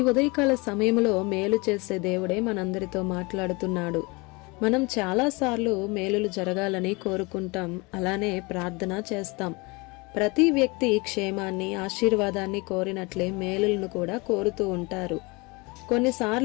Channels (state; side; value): quieter; right; 26.6 dB